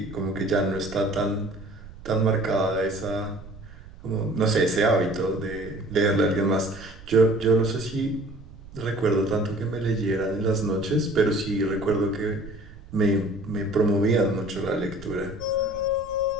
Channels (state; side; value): noise; right; rumble, 17 dB below the sound